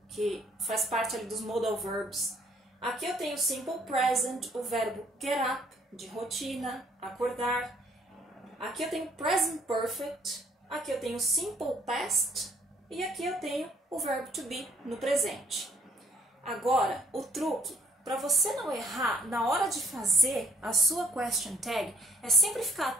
que faz parte ali dos modal verbs. Aqui eu tenho simple present, o verbo get up, de rotina, acordar. Aqui eu tenho present perfect. Aqui eu tenho simple past. E aqui eu tenho o verbo to be no presente. Agora, o truque, para você não errar na hora de fazer a sua question tag, é sempre ficar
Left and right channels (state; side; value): normal; both; correlation 0.62